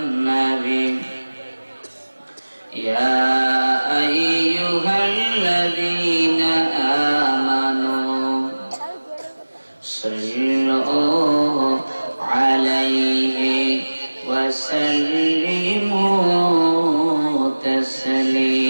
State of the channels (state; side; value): inverted; both; correlation -1.00